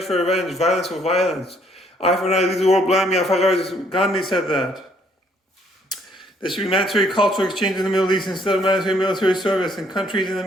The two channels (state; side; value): normal; both; correlation 0.66